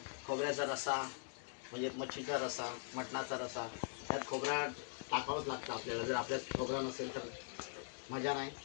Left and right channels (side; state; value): right; silent; digital silence